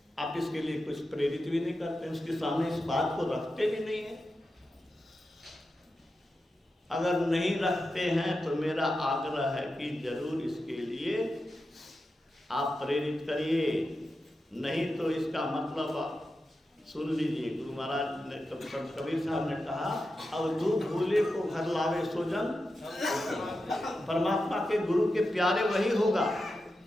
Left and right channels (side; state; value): both; normal; correlation 0.90